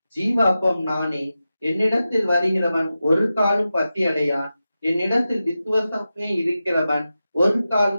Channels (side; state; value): both; inverted; correlation -0.92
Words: ஜீவ அப்பம் நானே, என்னிடத்தில் வருகிறவன் ஒரு காலும் பசி அடையான், என்னிடத்தில் விசுவாசமே இருக்கிறவன் ஒரு